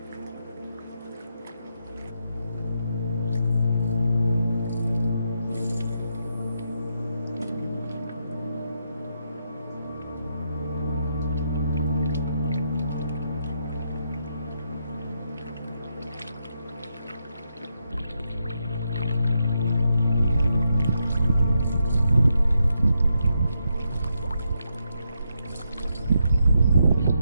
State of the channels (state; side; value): inverted; both; correlation -0.81